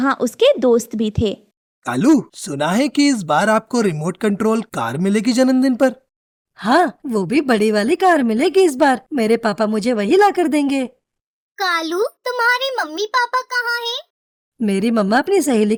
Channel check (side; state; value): both; identical; correlation 1.00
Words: उसके दोस्त भी थे। कालू, सुना है कि इस बार आपको रिमोट कंट्रोल कार मिलेगी जन्मदिन पर। हाँ, वो भी बड़ी वाली कार मिलेगी इस बार। मेरे पापा मुझे वही ला कर देंगे। कालू, तुम्हारे मम्मी पापा कहाँ हैं? मेरी मम्मा अपनी सहेली